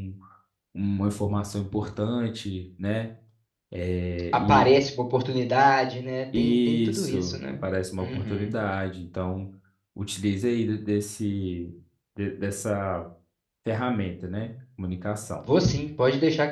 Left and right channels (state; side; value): identical; both; correlation 1.00